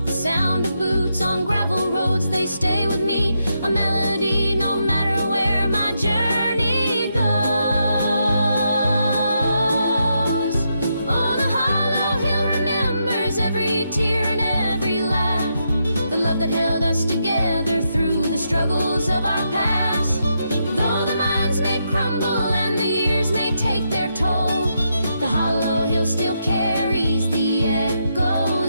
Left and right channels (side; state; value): both; inverted; correlation -0.81